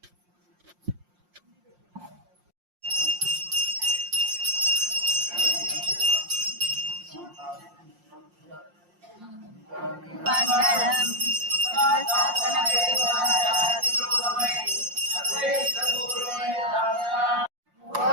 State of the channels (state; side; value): late; left; 5.6 ms